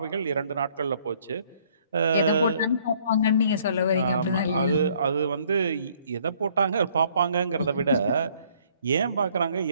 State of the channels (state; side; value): inverted; both; correlation -0.62